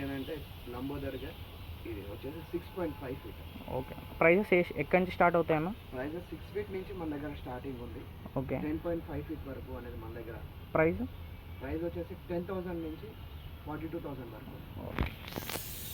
అని అంటే లంబోదర్గా ఇది వచ్చేసి 6.5 ఫీట్. ఓకే. ప్రైజెస్ ఎక్కడి నుంచి స్టార్ట్ అవుతాయన్న? ప్రైజెస్ 6 ఫీట్ నుంచి మన దగ్గర స్టార్టింగ్ ఉంది. ఓకే. 10.5 ఫీట్ వరకు అనేది మన దగ్గర ప్రైస్ వచ్చేసి 10,000 నుంచి 42,000 వరకు. ఓకే.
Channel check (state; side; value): identical; both; correlation 1.00